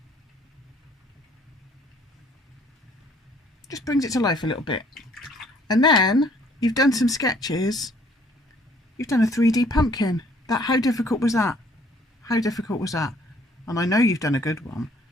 just brings it to life a little bit. And then you've done some sketches. You've done a 3D pumpkin. How difficult was that? How difficult was that? And I know you've done a good one.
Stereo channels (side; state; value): both; normal; correlation 0.60